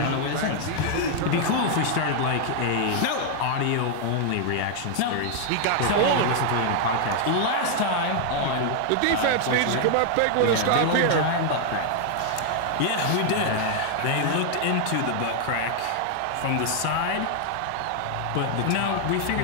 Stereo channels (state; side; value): different; both; correlation 0.00